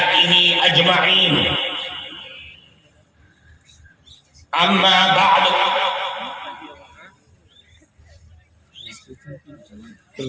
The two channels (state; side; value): identical; both; correlation 1.00